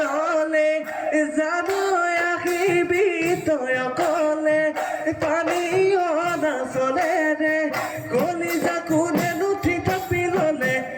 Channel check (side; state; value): both; identical; correlation 1.00